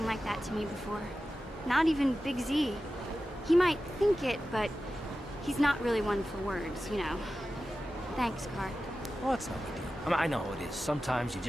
like that to me before. Not even Big Z. He might think it, but he's not really one for words, you know. Thanks, Karth. Well, it's no big deal. I mean, I know it is. Sometimes you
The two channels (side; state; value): both; normal; correlation 0.94